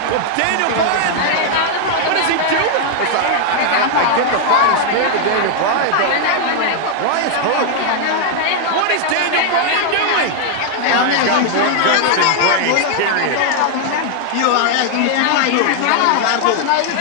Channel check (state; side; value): different; both; correlation 0.00